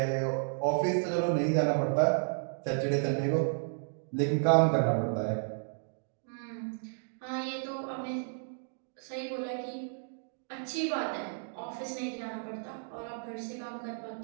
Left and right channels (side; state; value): left; silent; digital silence